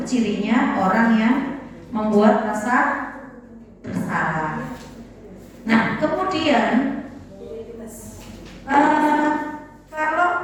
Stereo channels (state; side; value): identical; both; correlation 1.00